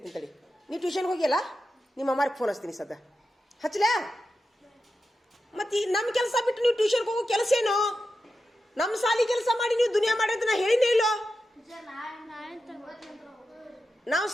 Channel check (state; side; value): normal; both; correlation 0.90